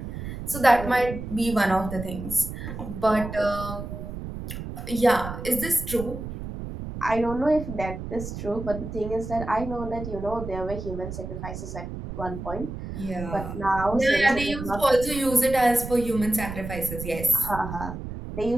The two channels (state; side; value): noise; right; rumble, 8 dB below the sound